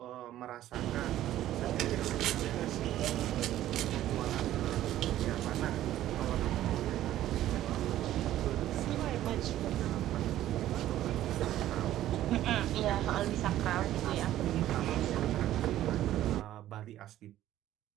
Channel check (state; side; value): quieter; left; 13.3 dB